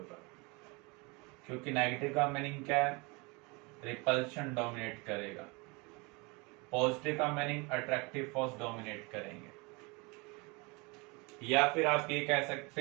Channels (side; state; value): left; quieter; 27.9 dB